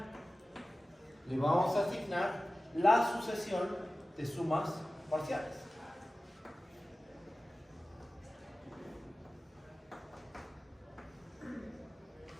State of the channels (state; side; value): normal; both; correlation 0.96